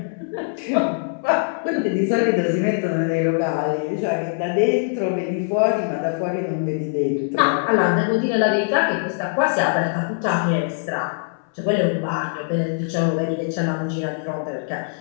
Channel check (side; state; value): right; silent; 64 dB below the other